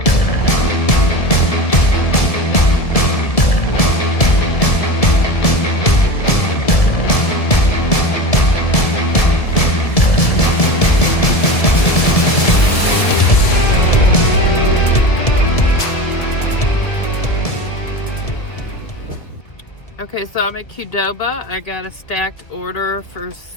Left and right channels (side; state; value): right; late; 1.7 ms